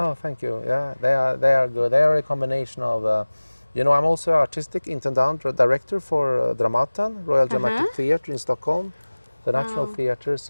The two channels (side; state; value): both; inverted; correlation -1.00